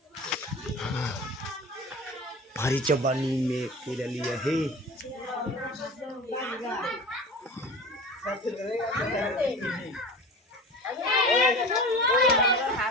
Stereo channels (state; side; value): normal; both; correlation 0.35